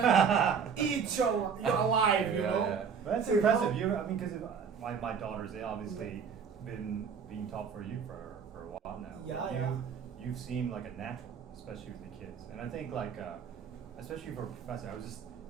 eat you alive, you know. But that's impressive. Because my daughters, they obviously been being taught for you for a while now. You've seemed like a natural, especially with the kids. And I think especially for a professor, I was just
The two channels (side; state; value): left; quieter; 6.5 dB